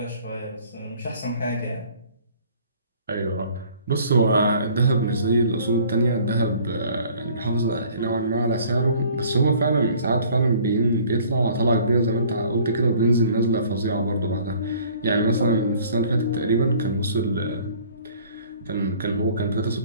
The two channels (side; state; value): both; inverted; correlation -0.54